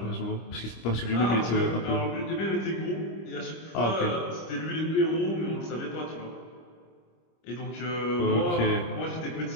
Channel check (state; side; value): late; right; 25 ms